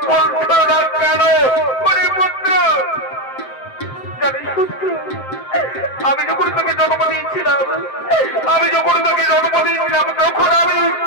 বলছো না কেন? পুত্র, জানিস পুত্র, আমি যখন তোকে জন্ম দিয়েছিলাম, তখন আমি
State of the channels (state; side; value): late; right; 7.7 ms